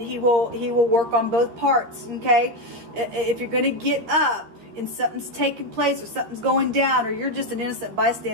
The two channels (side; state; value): left; late; 13 ms